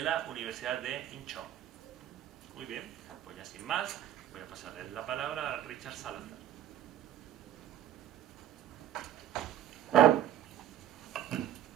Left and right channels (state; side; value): quieter; left; 11.3 dB